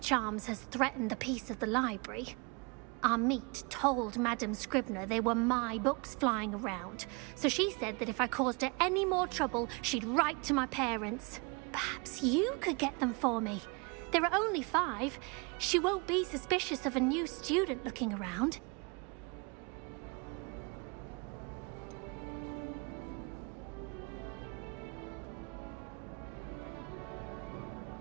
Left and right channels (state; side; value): quieter; left; 30.9 dB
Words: has threatened the peace of the library. Our meet told Madame Scribner they were my books flying around, so she said that if I caused her any more trouble, she'd write to my parents. Perhaps you could get them for me. There are only 5. She won't be suspicious of a new student looking around.